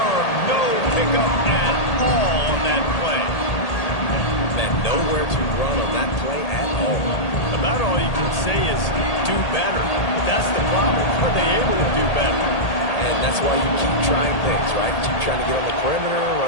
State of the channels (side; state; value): right; late; 1.8 ms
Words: No pickup at all on that play. Man, nowhere to run on that play at all. About all you can say is do better. That's the problem. Are they able to do better? And that's why you keep trying things, right? Keep trying to get on the perimeter,